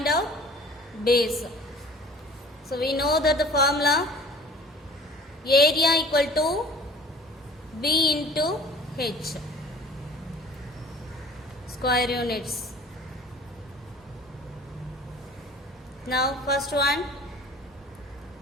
out base. So we know that the formula area equal to B into H square units. Now first one,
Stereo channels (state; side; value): normal; both; correlation 0.46